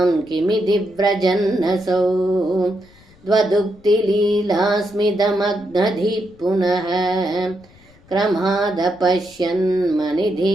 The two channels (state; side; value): noise; left; rumble, 27 dB below the sound